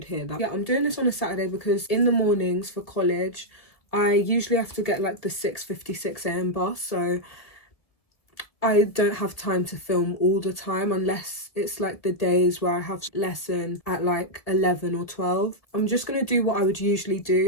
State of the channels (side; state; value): right; late; 1.5 ms